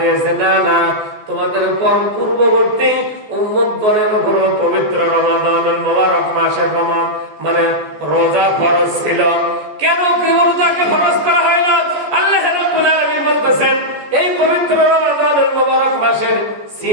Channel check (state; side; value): late; left; 14 ms